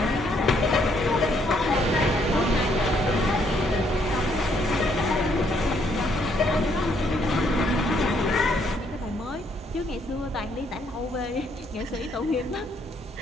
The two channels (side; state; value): both; normal; correlation 0.70